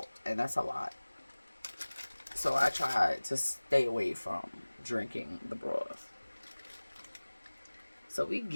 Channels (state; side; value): inverted; both; correlation -1.00